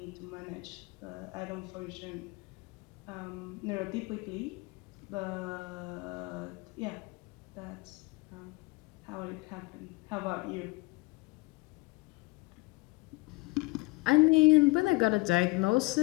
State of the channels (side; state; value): right; quieter; 24.6 dB